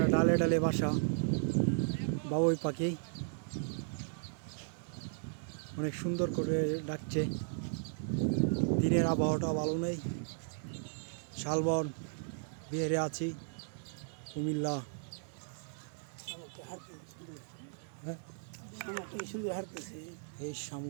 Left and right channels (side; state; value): left; silent; digital silence